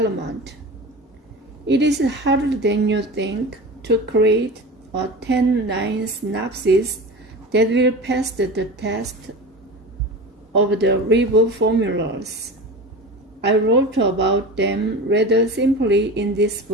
It is harder than you think to create a 10-line synopsis that will pass the test of the reboot formulas. I wrote about them rather simply in this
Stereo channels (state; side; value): normal; both; correlation 0.31